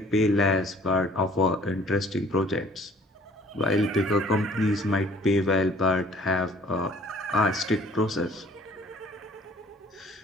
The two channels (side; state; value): both; normal; correlation 0.55